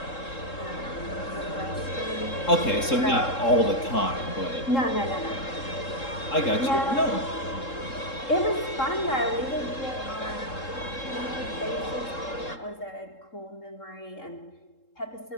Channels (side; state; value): right; late; 3.7 ms